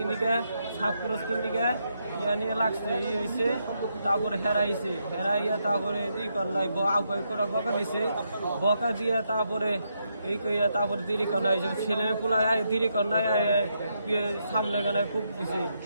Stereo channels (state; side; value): inverted; both; correlation -0.80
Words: দিকে সাপ করস কিন দিকে ইয়া নিয়ে লাগছে ই হয়েছে তারপরে হেরাইছে হেরাইয়া তারপরে ই করলাই আগাই করে বকা দিছে বকা দিয়ে তারপরে এই কইয়া তারপরে দেরি করাই ছেলে পোলায় দেরি করাই সামনে গানায় কূপ দিছে